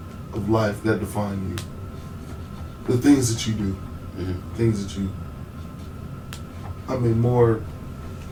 of life that define you. the things that you do, things that you. I mean, more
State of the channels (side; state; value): both; identical; correlation 1.00